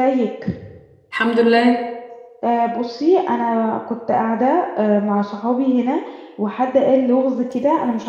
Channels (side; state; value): both; identical; correlation 1.00